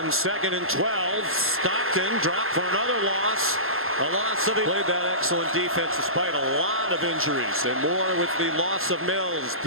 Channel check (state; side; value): late; left; 0.61 ms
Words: 2nd and 12, Stockton dropped for another loss. A loss of played that excellent defense despite a lot of injuries, and more with the loss of Mills.